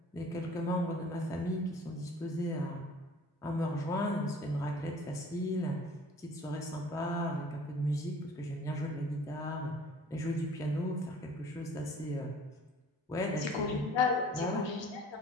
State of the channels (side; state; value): both; normal; correlation 0.50